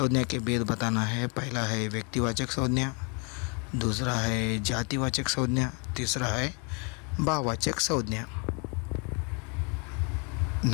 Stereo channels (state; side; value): quieter; right; 34.7 dB